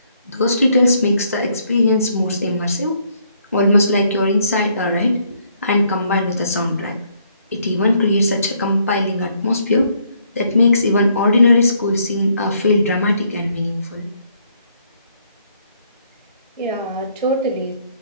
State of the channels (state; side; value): inverted; both; correlation -0.69